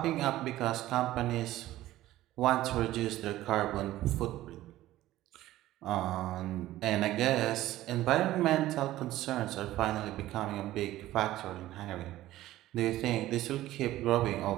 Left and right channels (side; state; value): left; quieter; 15.2 dB